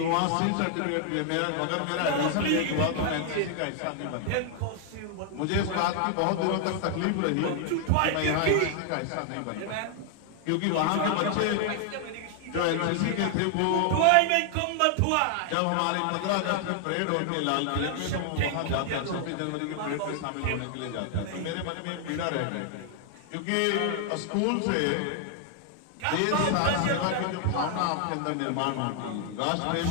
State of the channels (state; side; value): different; both; correlation 0.00